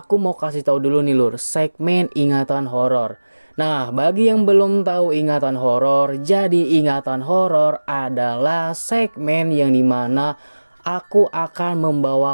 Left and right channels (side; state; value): both; inverted; correlation -1.00